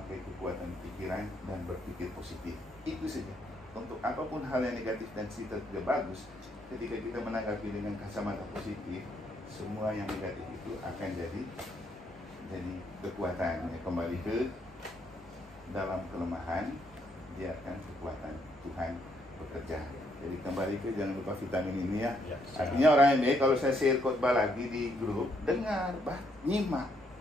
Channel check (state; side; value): normal; both; correlation 0.73